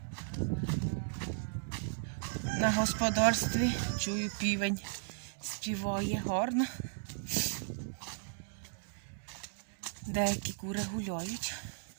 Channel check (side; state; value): left; silent; digital silence